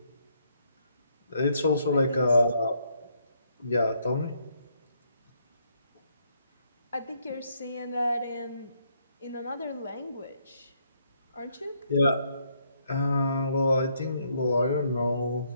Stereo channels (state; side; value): inverted; both; correlation -0.73